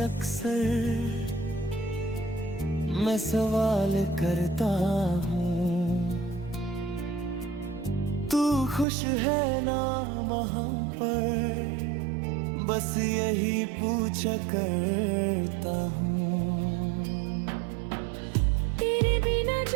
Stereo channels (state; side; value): drops out; left; at 8.8 s